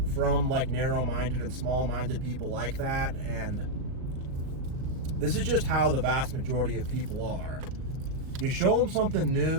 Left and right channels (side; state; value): left; late; 38 ms